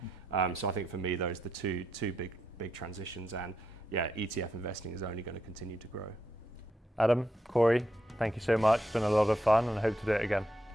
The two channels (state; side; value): normal; both; correlation 0.81